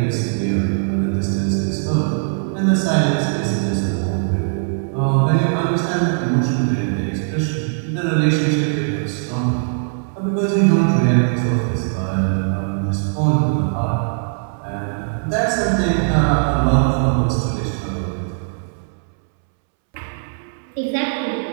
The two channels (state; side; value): silent; left; 66 dB below the other